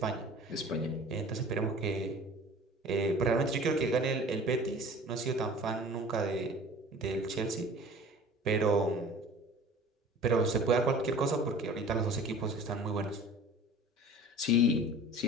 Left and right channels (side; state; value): both; normal; correlation 0.44